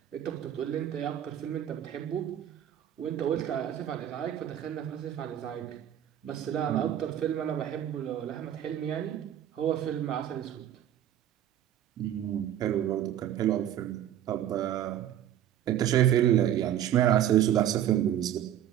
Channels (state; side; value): quieter; left; 11.0 dB